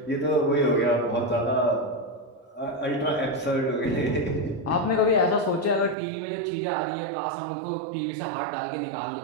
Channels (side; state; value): left; drops out; at 6.0 s